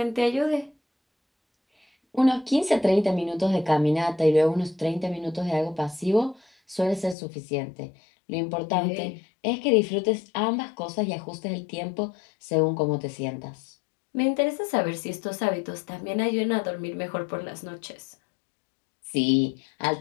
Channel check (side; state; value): right; drops out; at 7.2 s